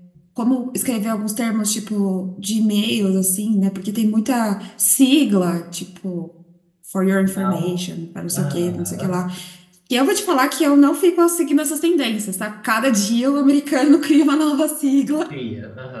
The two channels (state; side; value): identical; both; correlation 1.00